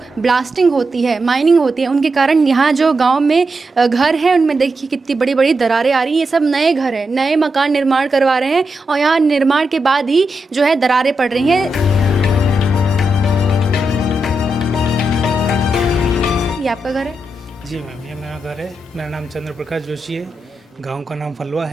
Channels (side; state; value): both; normal; correlation 0.86